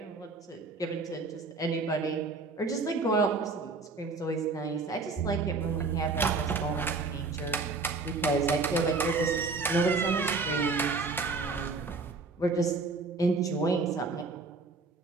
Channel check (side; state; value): left; quieter; 4.0 dB